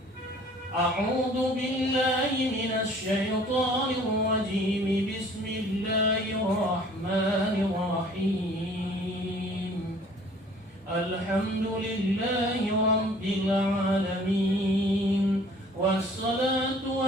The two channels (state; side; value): normal; both; correlation 0.53